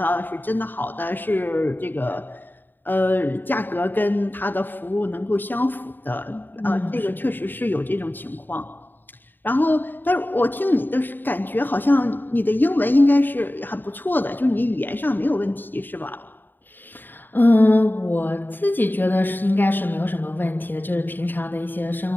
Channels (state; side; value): late; right; 0.092 ms